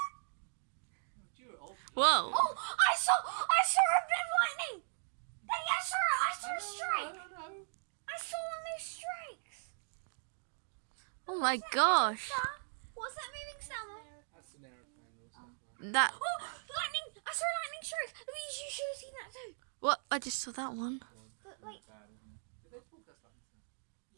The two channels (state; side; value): silent; left; digital silence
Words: Whoa. Oh, I saw a bit of lightning. Daddy, I saw a strike. I saw one of those strikes. Oh my gosh. What's that moving sound? That's an aeroplane or something. That... Oh, lightning! I saw a lightning strike. Louise, you should have seen that too. What? I just saw that one. But like, Bad, isn't it? Did they broadcast like that?